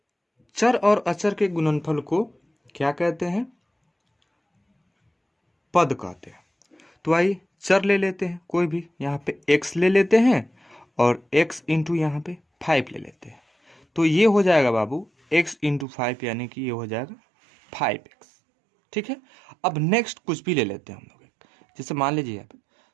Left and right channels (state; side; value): drops out; left; at 15.9 s